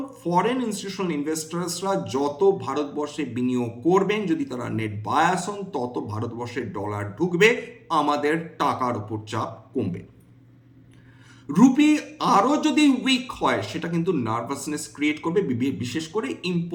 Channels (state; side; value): identical; both; correlation 1.00